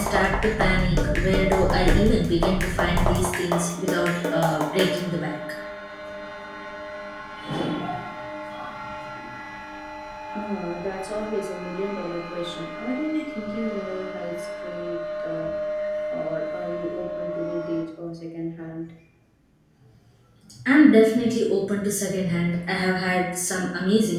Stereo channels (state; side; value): identical; both; correlation 1.00